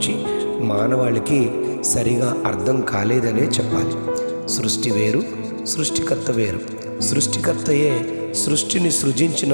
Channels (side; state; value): both; inverted; correlation -1.00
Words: మానవాళికి సరిగా అర్థం కాలేదనే చెప్పాలి. సృష్టి వేరు, సృష్టికర్త వేరు. సృష్టికర్తయే సృష్టిని సృజించిన